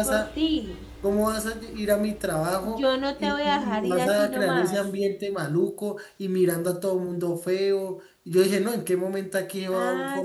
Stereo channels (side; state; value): both; identical; correlation 1.00